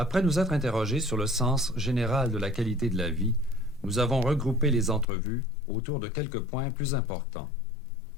nous être interrogés sur le sens général de la qualité de la vie, nous avons regroupé les entrevues autour de quelques points plus importants.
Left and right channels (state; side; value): drops out; right; at 5.1 s